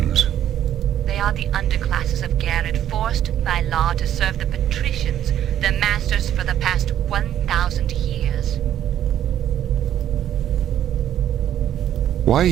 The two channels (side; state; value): left; quieter; 11.0 dB